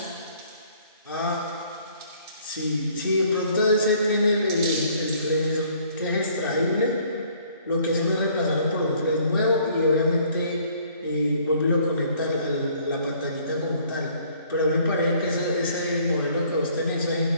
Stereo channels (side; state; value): both; inverted; correlation -0.60